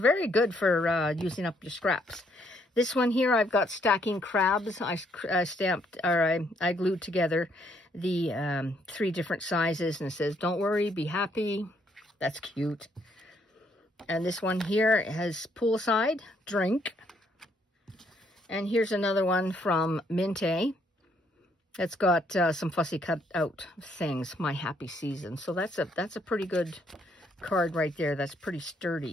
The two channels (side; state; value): both; normal; correlation 0.70